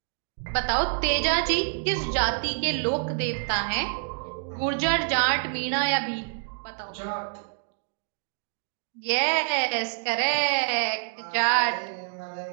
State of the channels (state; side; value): silent; left; digital silence